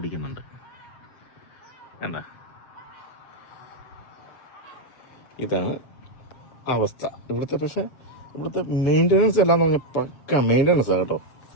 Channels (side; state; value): right; late; 7.4 ms